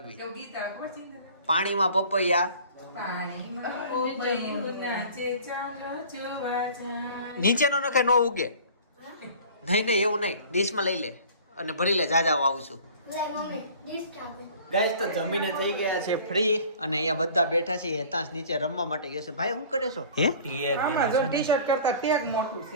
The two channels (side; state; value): both; inverted; correlation -0.46